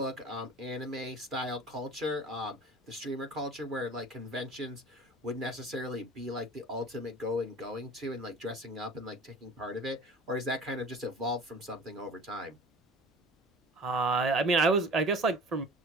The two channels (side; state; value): both; normal; correlation 0.42